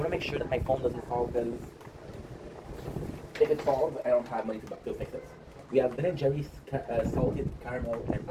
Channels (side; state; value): both; identical; correlation 1.00